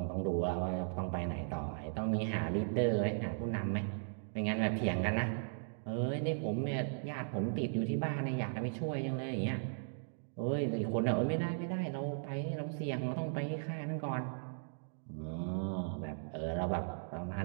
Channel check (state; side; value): silent; left; digital silence